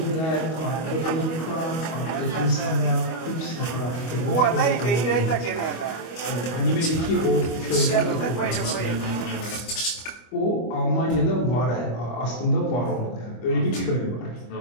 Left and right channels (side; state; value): right; late; 25 ms